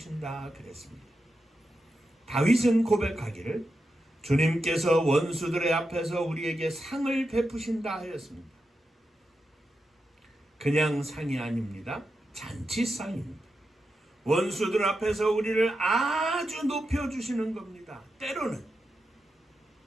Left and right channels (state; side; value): normal; both; correlation 0.88